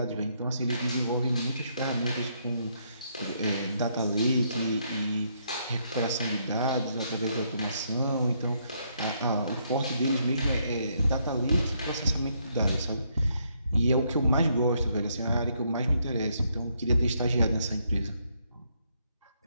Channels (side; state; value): both; inverted; correlation -0.74